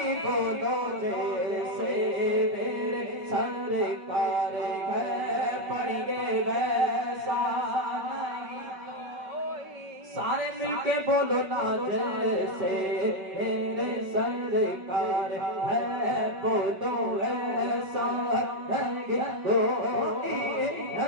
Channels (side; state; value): left; late; 5.3 ms